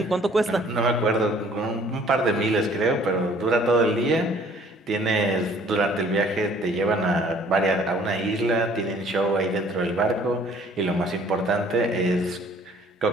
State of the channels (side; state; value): both; normal; correlation 0.56